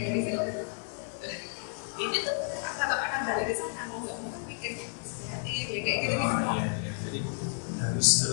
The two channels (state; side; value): silent; right; 57 dB below the other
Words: situ ini tuh tetap akan balik ke sana, mau nggak mau kan mikirnya kreatif ya kayak gitu gitu. Iya. Jadi